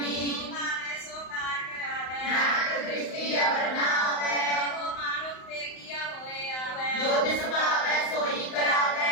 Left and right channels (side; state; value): right; late; 35 ms